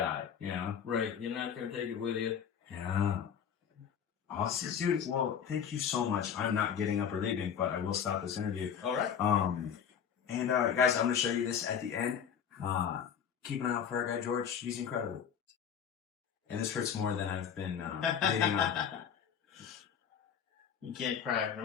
you know? Right. You're not going to take it with you. Yeah. Awesome, dude. Well, thank you so much. I'm not getting up or leaving, but I will stop this interview. All right. And guys, I'm going to show you this at the end. Keep an eye out for our guy George. He's incredible. And this hurts more than I've been bleeding on. You can't cry.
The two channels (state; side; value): quieter; right; 7.9 dB